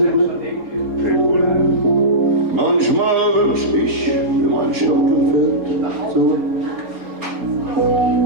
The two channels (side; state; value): left; late; 4.0 ms